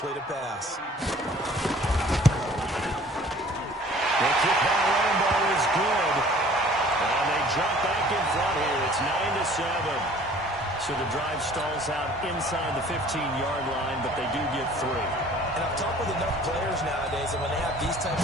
a pass. The kick by Rambo is good. And they jump back in front here. It's 9-7. So the drive stalls out inside the 15-yard line, but they do get 3. And I've talked with enough players nowadays, and when they have these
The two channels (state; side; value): normal; both; correlation 0.51